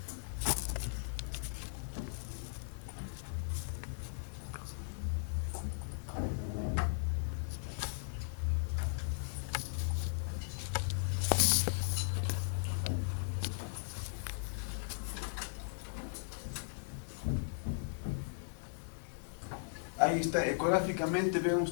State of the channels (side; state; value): right; silent; 53 dB below the other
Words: Ahí está, ecográficamente ven